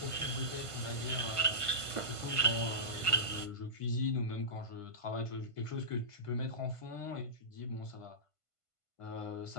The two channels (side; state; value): right; late; 1.5 ms